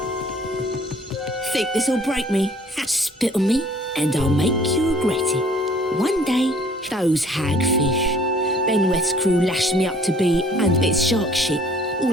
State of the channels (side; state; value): both; normal; correlation 0.56